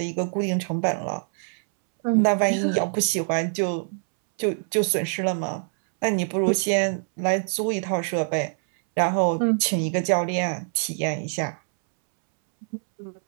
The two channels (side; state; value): left; silent; 62 dB below the other